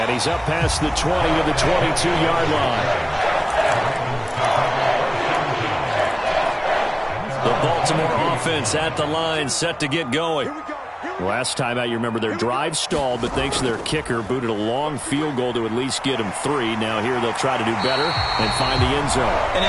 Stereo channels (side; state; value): both; identical; correlation 1.00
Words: he's up past the 20 to the 22-yard line. The Baltimore offense at the line, set to get going. Last time out, you remember their drive stalled, but thanks to their kicker, booted a long field goal to at least get them 3. Now here they'll try to do better and find the end zone. And